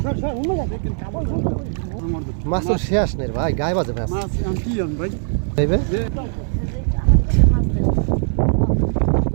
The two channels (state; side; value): silent; left; 66 dB below the other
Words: মাছ তো শেষ নেই রে ভাই, গায়ে বাজে মাছ ভাই।